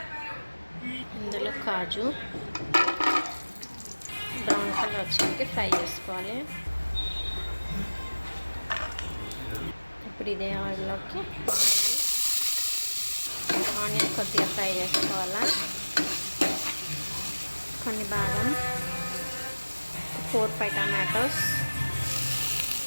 ఇందులో కాజు బ్రౌన్ కలర్ వచ్చాక ఫ్రై చేసుకోవాలి. ఇప్పుడు ఇదే ఆయిల్లోకి ఆనియన్ కొద్దిగా ఫ్రై చేసుకోవాలా. కొన్ని బాదం, 4-5 టమాటోస్,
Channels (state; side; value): inverted; both; correlation -1.00